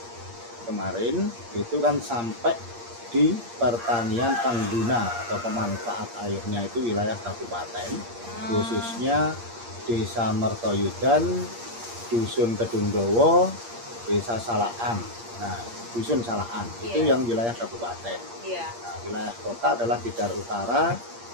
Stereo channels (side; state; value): left; late; 8.6 ms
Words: kemarin itu kan sampai di pertanian pengguna atau pemanfaat airnya itu wilayah kabupaten, khususnya Desa Mertoyudan, Dusun Kedungdowo, Desa Salaan. Nah, Dusun Salaan itu yang wilayah kabupaten. Nah, wilayah kota adalah Tidar Utara,